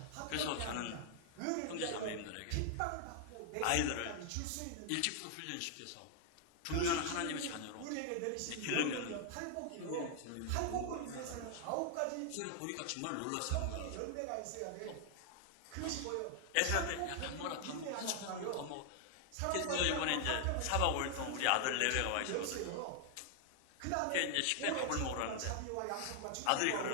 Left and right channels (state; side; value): different; both; correlation 0.00